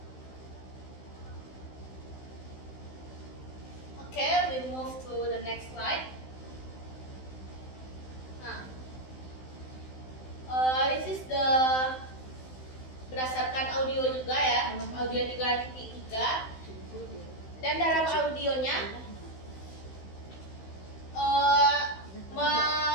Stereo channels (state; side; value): late; right; 16 ms